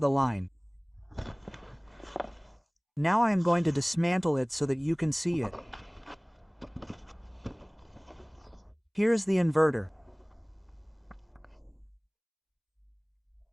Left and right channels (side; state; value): both; identical; correlation 1.00